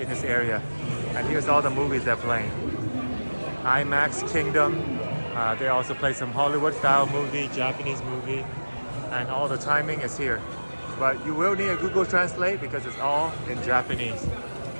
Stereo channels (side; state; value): both; inverted; correlation -1.00